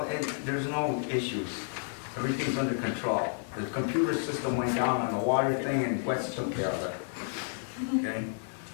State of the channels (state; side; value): silent; right; 57 dB below the other